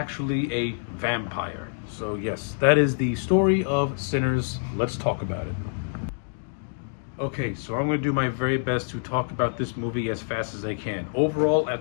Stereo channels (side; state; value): right; silent; digital silence